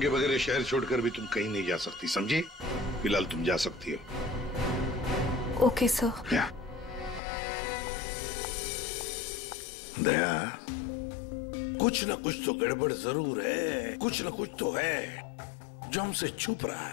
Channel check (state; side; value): drops out; right; at 7.2 s